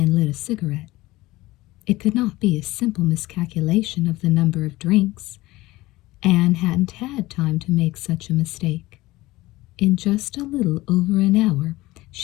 lit a cigarette. It could not be a simple miscalculation of the number of drinks. Anne hadn't had time to make such a mistake. In just a little over an hour,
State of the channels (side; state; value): right; quieter; 18.9 dB